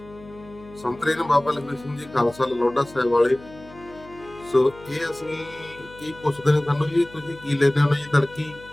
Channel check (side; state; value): left; noise; hum, 20 dB below the sound